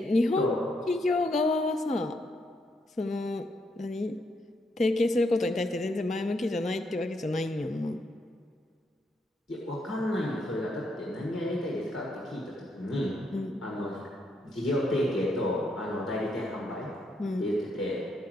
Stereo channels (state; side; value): normal; both; correlation 0.77